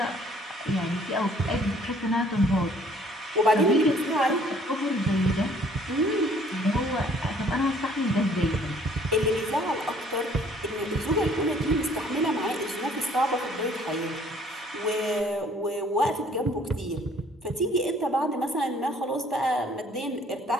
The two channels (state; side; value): normal; both; correlation 0.58